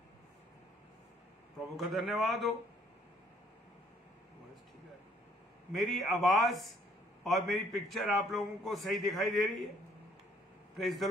प्रभु का धन्यवाद हो। मेरी आवाज और मेरी पिक्चर आप लोगों को सही दिखाई दे रही है? Praise the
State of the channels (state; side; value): normal; both; correlation 0.63